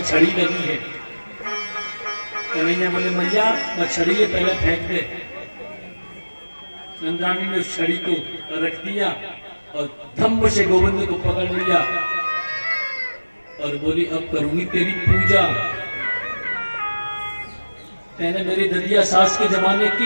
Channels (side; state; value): both; inverted; correlation -1.00